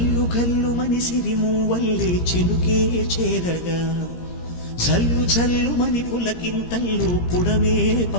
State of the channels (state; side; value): late; right; 17 ms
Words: కల్లు మని సిరిమూవల్లే చినుకే చేరగా జల్లు జల్లు మని పులకింతల్లో పుడమే